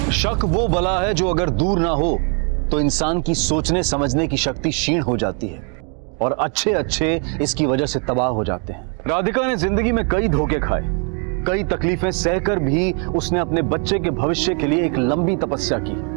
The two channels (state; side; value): quieter; left; 39.8 dB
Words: शक वो बला है जो अगर दूर ना हो तो इंसान की सोचने समझने की शक्ति क्षीण हो जाती है, और अच्छे अच्छे इसकी वजह से तबाह हो जाते हैं। राधिका ने जिंदगी में कई धोखे खाए, कई तकलीफें सहकर भी उसने अपने बच्चे के भविष्य के लिए एक लंबी तपस्या